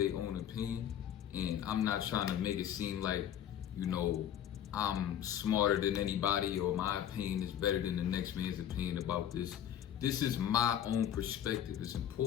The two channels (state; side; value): quieter; right; 10.2 dB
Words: own opinion, and I'm not trying to make it seem like I'm smarter than anybody or my opinion is better than the next man's opinion about this. This is my own perspective. It's